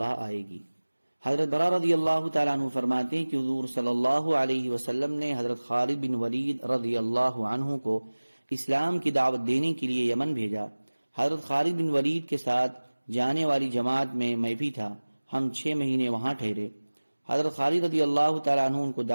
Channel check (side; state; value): both; inverted; correlation -1.00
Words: آئے گی۔ حضرت برا رضی اللہ تعالیٰ عنہ فرماتے ہیں کہ حضور صلی اللہ علیہ وسلم نے حضرت خالد بن ولید رضی اللہ عنہ کو اسلام کی دعوت دینے کے لیے یمن بھیجا۔ حضرت خالد بن ولید کے ساتھ جانے والی جماعت میں بھی تھا۔ ہم 6 مہینے وہاں ٹھہرے۔ حضرت خالد رضی اللہ تعالیٰ عنہ ان کو